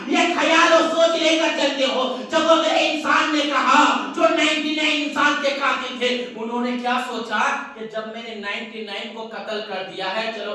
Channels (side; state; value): both; identical; correlation 1.00